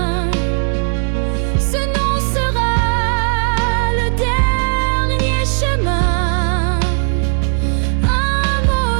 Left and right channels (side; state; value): left; silent; 69 dB below the other